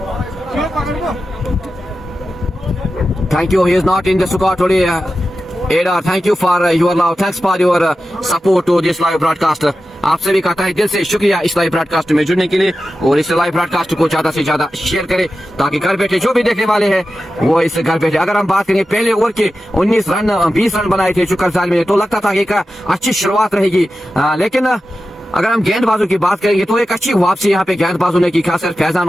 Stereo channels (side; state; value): both; normal; correlation 0.92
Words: Thank you. He is not in the squad today. Ada, thank you for your love. Thanks for your support to this live broadcast. आप सभी का तहे दिल से शुक्रिया इस live broadcast में जुड़ने के लिए, और इस लाइव ब्रॉडकास्ट को ज्यादा से ज्यादा शेयर करें ताकि घर बैठे जो भी देखने वाले हैं वो इस घर बैठे. अगर हम बात करें पहले ओवर के 19 रन 20 रन बनाए थे चुकर साल में, तो लगता था कि एक अच्छी शुरुआत रहेगी, लेकिन अगर हम गेंदबाजों की बात करेंगे तो एक अच्छी वापसी यहाँ पे गेंदबाजों ने की. खासकर फैजान